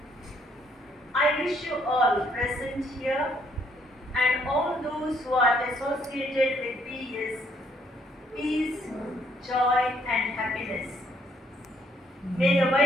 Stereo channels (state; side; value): normal; both; correlation 0.68